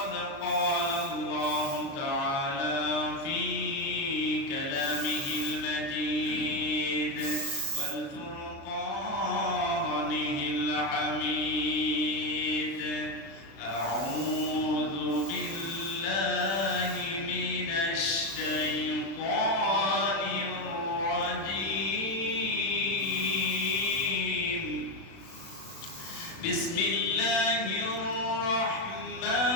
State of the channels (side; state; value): right; late; 36 ms